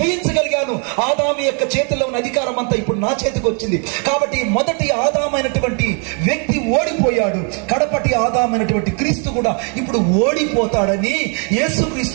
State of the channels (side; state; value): left; quieter; 37.9 dB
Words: ఆదాము యొక్క చేతిలో ఉన్న అధికారం అంతా ఇప్పుడు నా చేతికి వచ్చింది. కాబట్టి మొదటి ఆదామైనటువంటి వ్యక్తి ఓడిపోయాడు, కడపటి ఆదామైనటువంటి క్రీస్తు కూడా ఇప్పుడు ఓడిపోతాడని